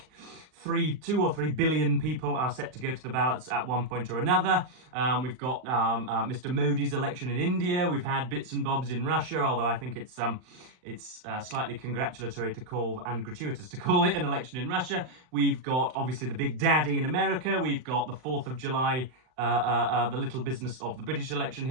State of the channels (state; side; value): late; left; 39 ms